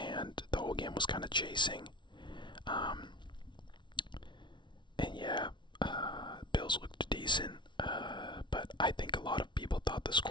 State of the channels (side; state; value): right; late; 0.23 ms